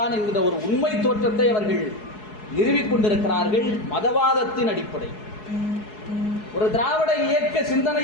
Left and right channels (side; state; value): right; late; 4.7 ms